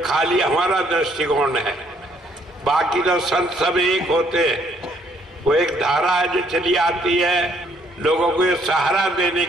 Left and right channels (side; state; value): both; normal; correlation 0.66